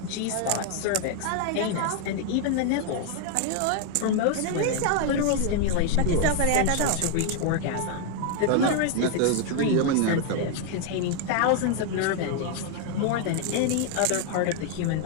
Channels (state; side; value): different; both; correlation 0.00